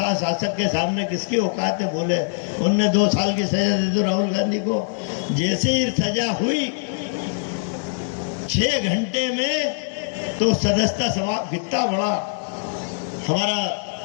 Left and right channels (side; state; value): right; silent; digital silence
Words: शासक के सामने किसकी औकात है बोले। उनने 2 साल की सजा दे दी राहुल गांधी को। जैसे ही सजा हुई 6 घंटे में तो सदस्यता समाप्त। कितना बड़ा हमारा